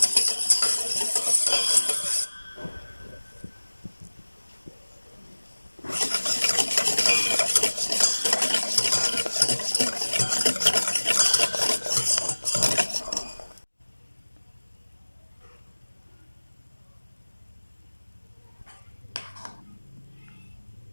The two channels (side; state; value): both; inverted; correlation -1.00